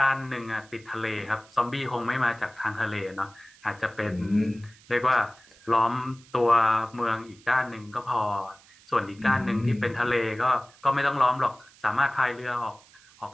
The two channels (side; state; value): right; noise; hiss, 26 dB below the sound